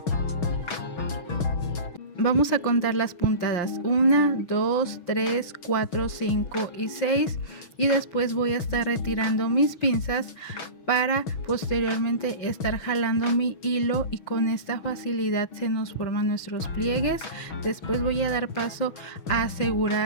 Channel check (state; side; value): late; right; 6.2 ms